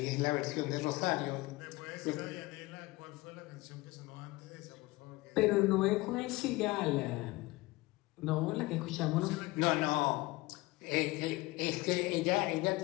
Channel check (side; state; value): right; quieter; 20.8 dB